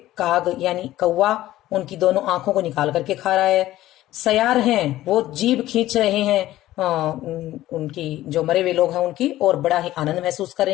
काग यानी कौवा उनकी दोनों आंखों को निकाल करके खा रहा है। सयार हैं वो जीभ खींच रहे हैं उनकी, जो मरे हुए लोग हैं उनकी, और बड़ा ही आनंद महसूस कर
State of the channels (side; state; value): right; quieter; 15.0 dB